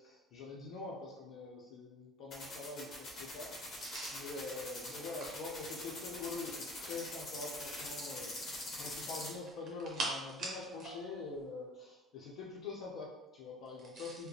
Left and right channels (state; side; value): normal; both; correlation 0.45